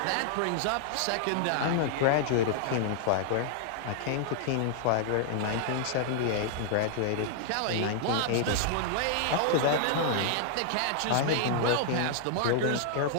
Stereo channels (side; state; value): both; different; correlation -0.01